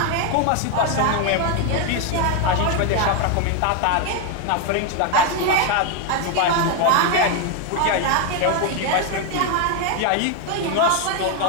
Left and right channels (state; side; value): different; both; correlation 0.01